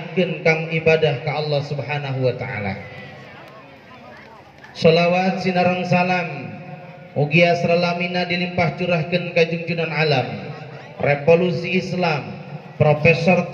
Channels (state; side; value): identical; both; correlation 1.00